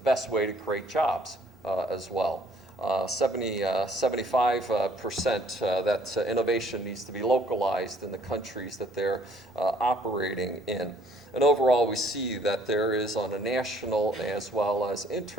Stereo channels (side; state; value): both; normal; correlation 0.61